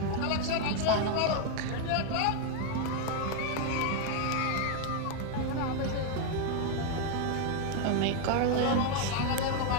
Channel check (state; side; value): different; both; correlation 0.01